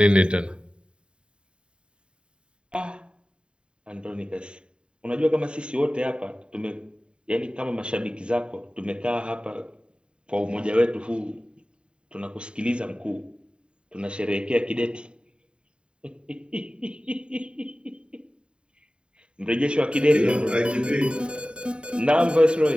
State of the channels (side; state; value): left; late; 0.052 ms